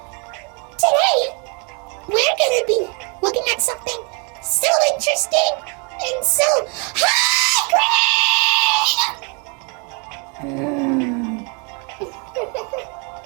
Today, we're gonna be looking at something so interesting and so high-grade!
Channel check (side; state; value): left; quieter; 34.7 dB